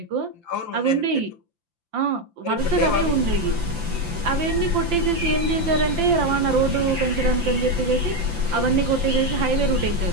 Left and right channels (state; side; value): late; left; 5.9 ms